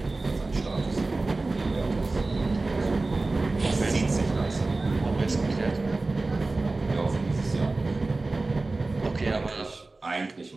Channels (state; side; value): quieter; left; 3.3 dB